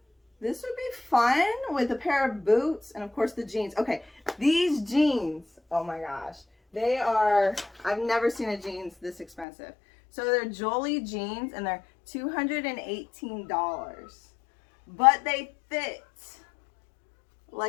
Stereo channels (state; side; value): drops out; right; at 9.5 s